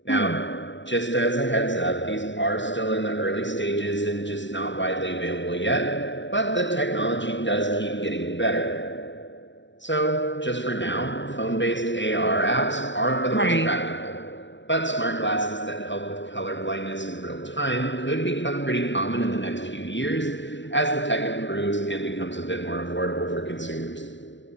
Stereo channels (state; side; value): late; right; 0.54 ms